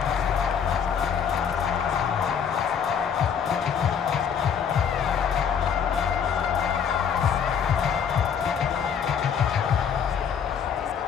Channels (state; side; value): quieter; right; 7.4 dB